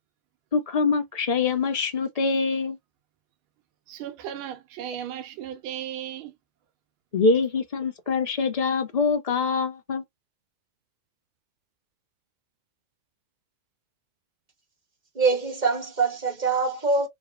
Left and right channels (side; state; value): left; late; 2.1 ms